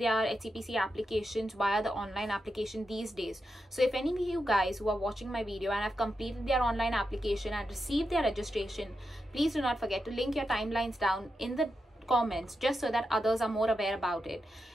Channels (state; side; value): normal; both; correlation 0.87